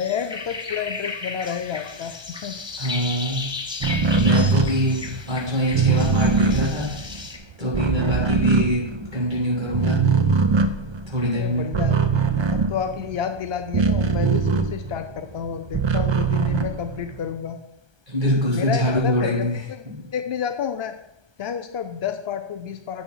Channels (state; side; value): late; left; 1.3 ms